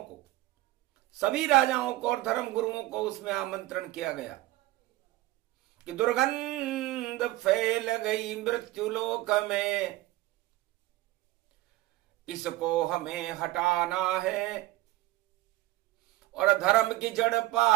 सभी राजाओं को और धर्म गुरुओं को उसमें आमंत्रण किया गया कि दुर्गंध फैल गई मृत्युलोक में, इसको हमें हटाना है और धर्म की जड़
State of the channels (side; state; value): left; quieter; 17.6 dB